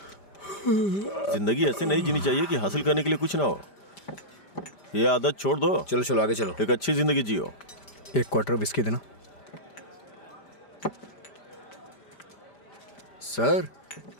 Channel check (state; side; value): late; right; 5.0 ms